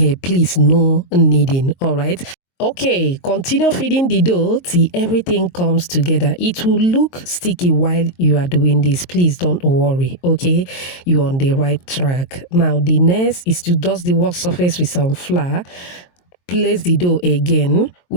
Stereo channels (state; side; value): late; right; 22 ms